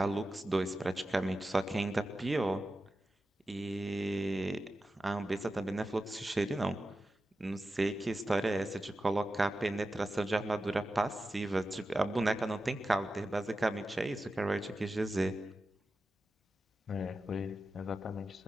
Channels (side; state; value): both; normal; correlation 0.92